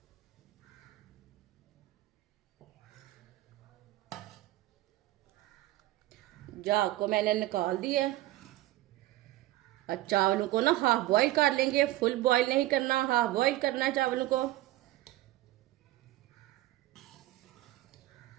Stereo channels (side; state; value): left; quieter; 16.2 dB